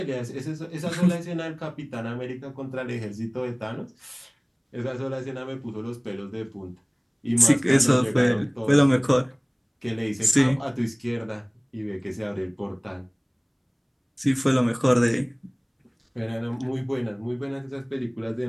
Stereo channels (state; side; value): identical; both; correlation 1.00